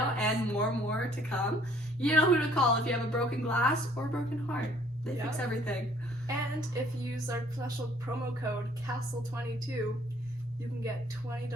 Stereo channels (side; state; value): both; normal; correlation 0.59